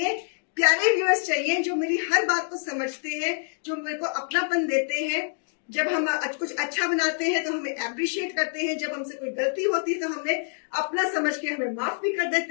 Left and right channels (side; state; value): right; silent; digital silence